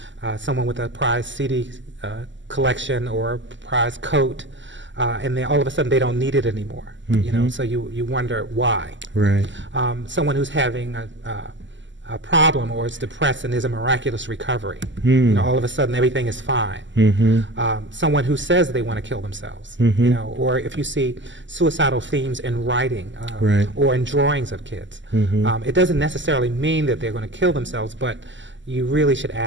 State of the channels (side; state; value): left; late; 0.54 ms